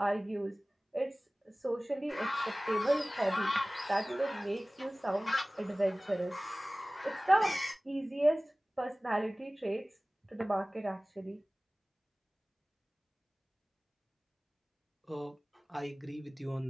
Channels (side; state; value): both; normal; correlation 0.98